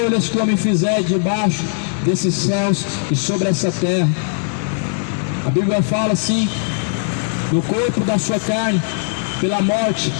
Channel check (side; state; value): right; silent; 67 dB below the other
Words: que o homem fizer debaixo desses céus e sobre essa terra. A Bíblia fala assim: no corpo da sua carne, pela morte,